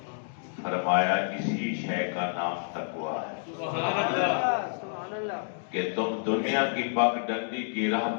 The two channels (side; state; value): right; silent; digital silence